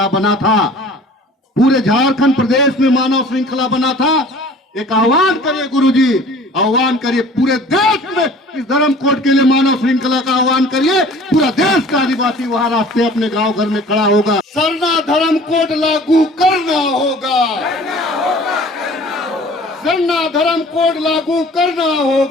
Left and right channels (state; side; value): normal; both; correlation 0.47